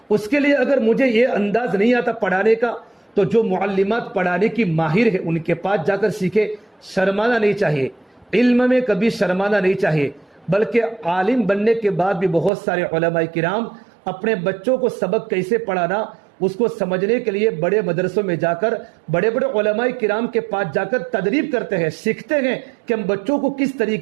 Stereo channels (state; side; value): drops out; left; at 12.5 s